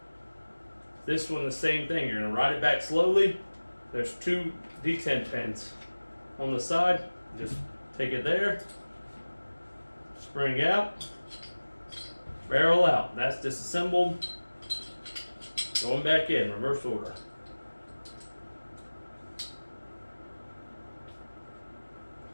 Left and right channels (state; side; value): inverted; both; correlation -1.00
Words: This one, the same thing. You're going to ride it back slowly. There's 2 D10 pins on the side. Just take it there, spring out, barrel out. That's disassembled. Going back in, reverse order.